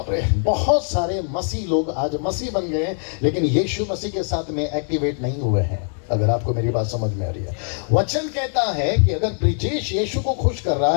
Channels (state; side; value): silent; right; 64 dB below the other